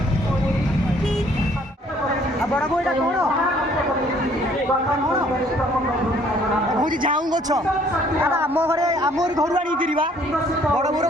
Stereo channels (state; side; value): normal; both; correlation 0.61